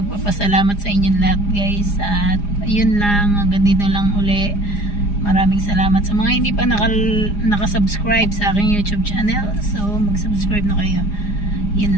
sa inyong lahat guys. At yun lang, hanggang dito lang uli. Maraming salamat sa mga hindi pa nakasubscribe sa aking YouTube channel. So mag-subscribe na kayo.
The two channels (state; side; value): late; right; 4.9 ms